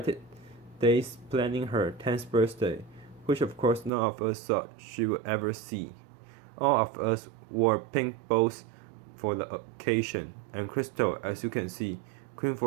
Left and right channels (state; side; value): drops out; left; at 3.9 s